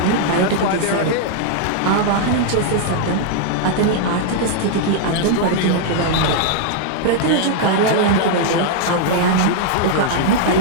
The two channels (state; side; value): different; both; correlation -0.01